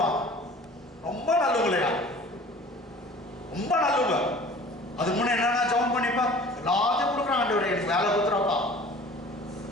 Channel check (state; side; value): normal; both; correlation 0.46